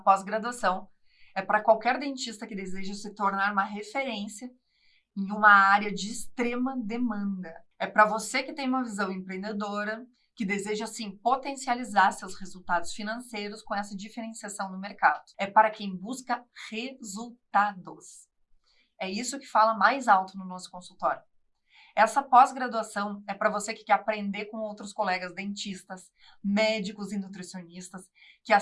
é para qualquer dentista que deseja se tornar uma referência em uma área de extrema demanda. É para você que tem uma visão empreendedora, que deseja, sim, potencializar seus resultados financeiros com essa diferenciação no mercado. É para quem busca resultados. É isso que fala mais alto no nosso consultório. Essa pós-graduação é para você que quer aprender com outros colegas dentistas, médicos e nutricionistas, que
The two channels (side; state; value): both; identical; correlation 1.00